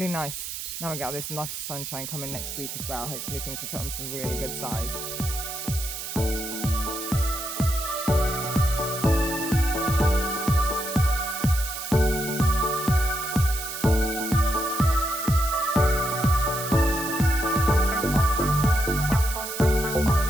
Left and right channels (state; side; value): noise; right; hiss, 7 dB below the sound